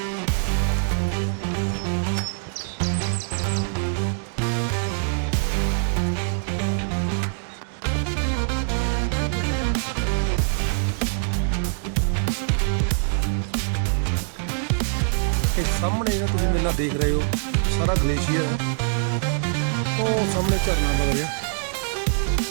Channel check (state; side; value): silent; left; digital silence